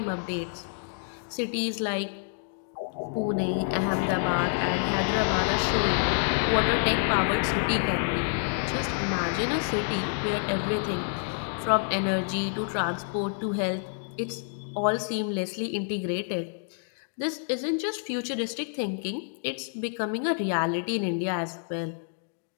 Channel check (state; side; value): silent; right; digital silence